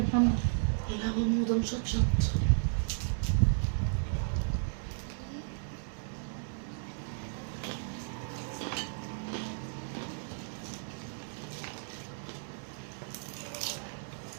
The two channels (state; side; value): silent; left; digital silence